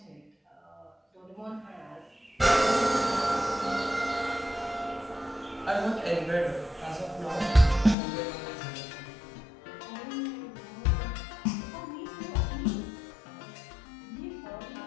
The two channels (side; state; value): right; drops out; at 8.0 s